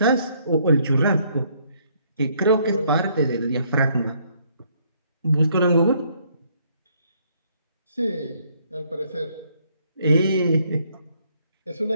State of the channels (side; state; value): both; inverted; correlation -0.67